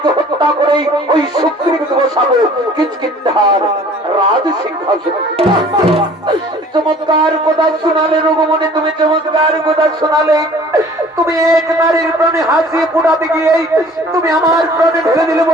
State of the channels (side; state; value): both; normal; correlation 0.50